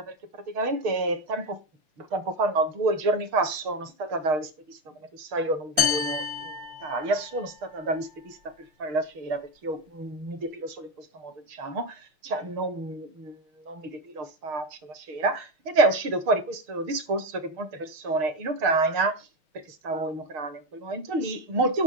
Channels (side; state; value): left; late; 6.5 ms